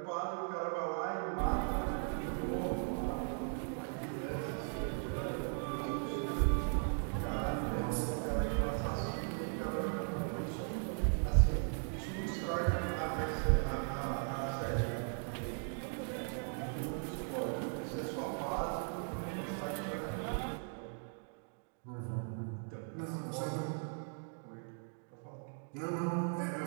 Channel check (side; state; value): left; silent; 52 dB below the other